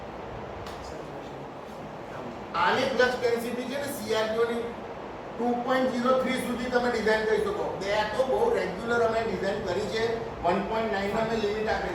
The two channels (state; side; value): identical; both; correlation 1.00